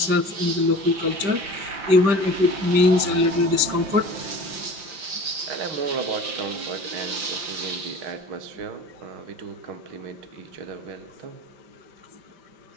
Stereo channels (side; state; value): left; late; 5.8 ms